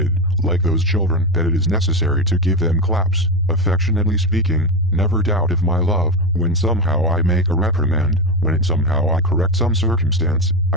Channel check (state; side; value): normal; both; correlation 0.14